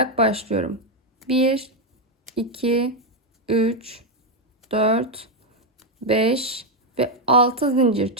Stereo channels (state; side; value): normal; both; correlation 0.04